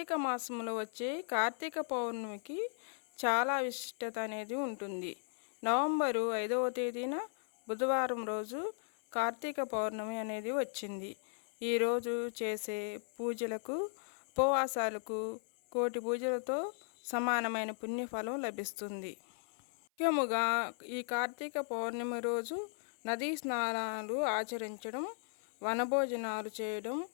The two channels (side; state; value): right; silent; 53 dB below the other